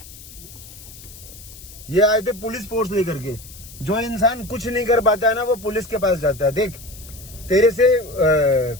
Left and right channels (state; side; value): noise; left; hiss, 18 dB below the sound